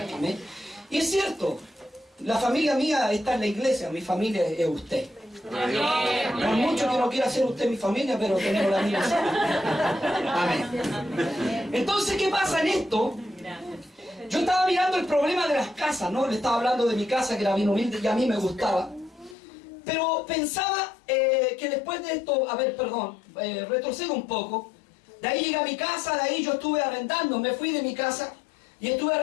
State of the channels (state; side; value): drops out; right; at 19.4 s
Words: Amén. Y es cierto, la familia mía está en la iglesia, mi familia es usted. No es mucho que no quiera ser usted mi familia, pero tenemos la misma. Amén. Entonces, ¿qué pasa en esto? Yo estaba mirando el problema de las casas, ¿no? Le estaba hablando de mi casa, que era bien humilde y a mí me gustaba. Pero pensaba que después de esto, retrocedo un poco. De ahí llegué a mi casa, de ahí yo estuve arrendando, me fui de mi casa y estuve